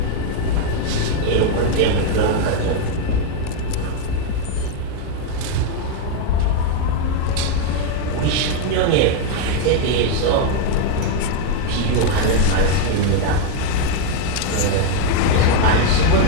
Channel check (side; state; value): both; different; correlation 0.01